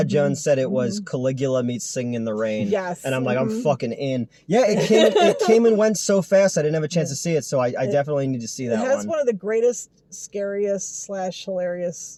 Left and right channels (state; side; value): identical; both; correlation 1.00